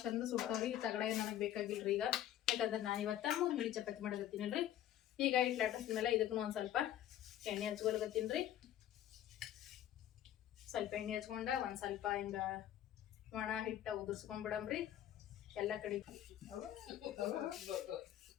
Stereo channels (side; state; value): right; quieter; 11.9 dB